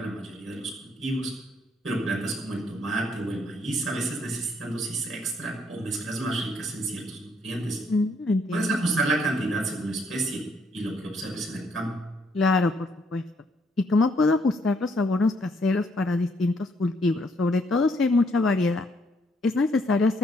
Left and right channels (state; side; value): normal; both; correlation 0.70